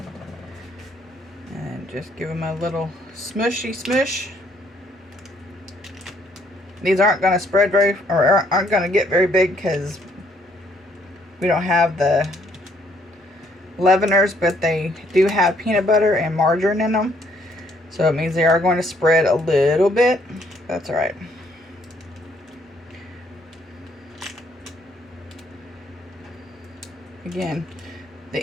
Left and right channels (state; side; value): normal; both; correlation 0.67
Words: And just give them a little smushy smush. These aren't going to spread very, or aren't going to get very big because we don't have the leaveners, but they do have peanut butter and margarine in them. So it means they are going to spread a little bit. That's all right. Again, the